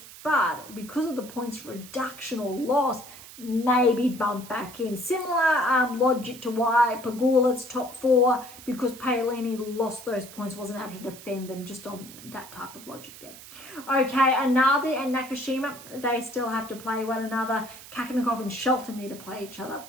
but because of the points reduction or loss, maybe bump back in. Similar logic to why Pegula's top 4, because Paolini lost those points, wasn't able to defend them, just on that type of logic there. Okay, Analdi and Nakashima, they still have to play one another. Kakanakov and Shelton need to play each other.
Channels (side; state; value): right; noise; hiss, 17 dB below the sound